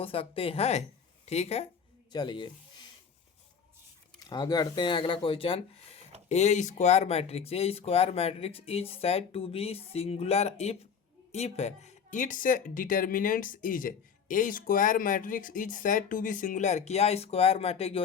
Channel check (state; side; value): quieter; right; 6.7 dB